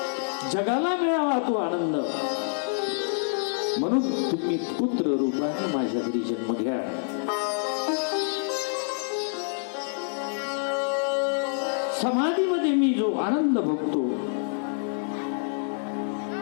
जगाला मिळावा तो आनंद. म्हणून तुम्ही पुत्र रूपाने माझ्या घरी जन्म घ्या. समाधीमध्ये मी जो आनंद भोगतो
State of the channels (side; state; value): right; silent; digital silence